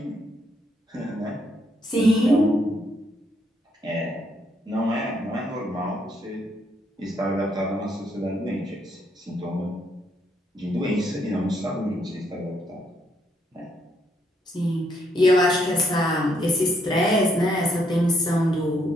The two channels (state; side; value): normal; both; correlation 0.73